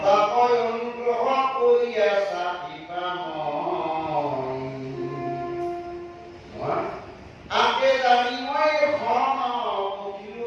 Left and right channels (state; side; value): identical; both; correlation 1.00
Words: তাকৈ অনুগ্ৰহ কৰি আছা আগে জানি মই খন